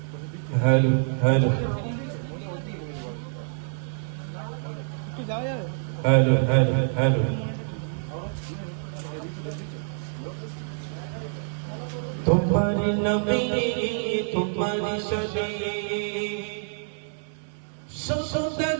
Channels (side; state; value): left; silent; 60 dB below the other